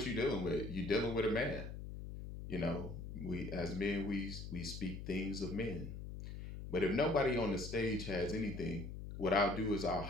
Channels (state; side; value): noise; left; hum, 8 dB below the sound